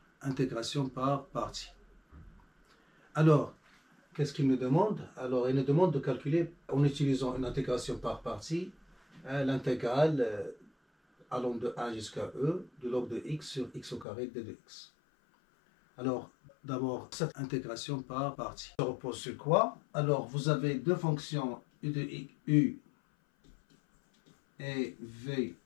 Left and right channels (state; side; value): drops out; right; at 14.1 s